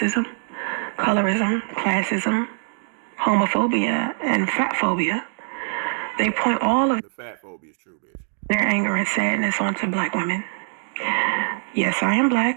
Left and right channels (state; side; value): silent; left; digital silence